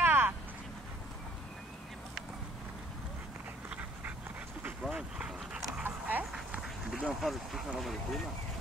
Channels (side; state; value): both; normal; correlation 0.60